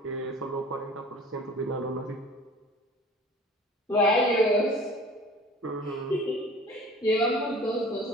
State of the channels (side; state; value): both; normal; correlation 0.45